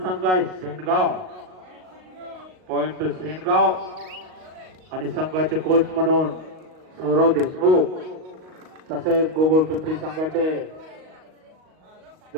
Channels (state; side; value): late; left; 38 ms